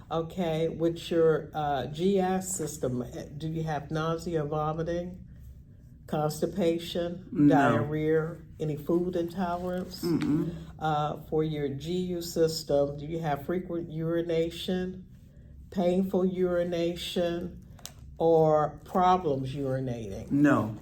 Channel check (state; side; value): identical; both; correlation 1.00